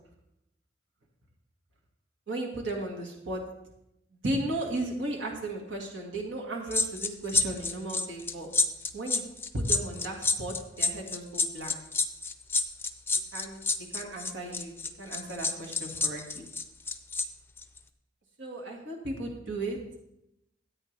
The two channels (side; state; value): both; normal; correlation 0.43